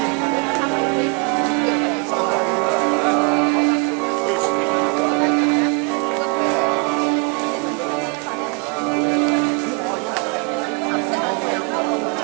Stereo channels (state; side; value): quieter; left; 33.8 dB